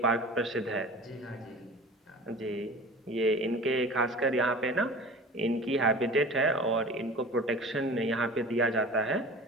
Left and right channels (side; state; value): both; normal; correlation 0.39